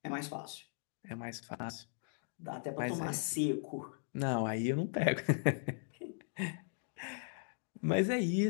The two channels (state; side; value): silent; right; digital silence